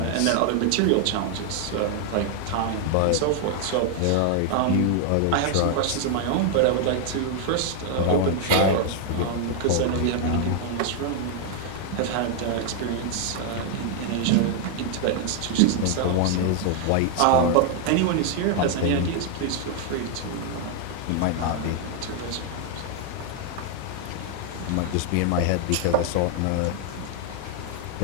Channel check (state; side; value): different; both; correlation 0.00